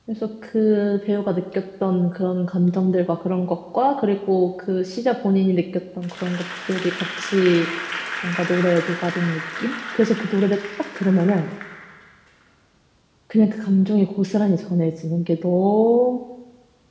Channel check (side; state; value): both; identical; correlation 1.00